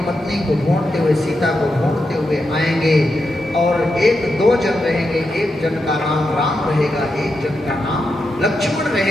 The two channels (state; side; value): normal; both; correlation 0.86